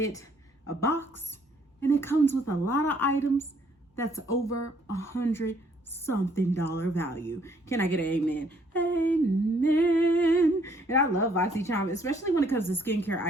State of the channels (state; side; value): normal; both; correlation 0.65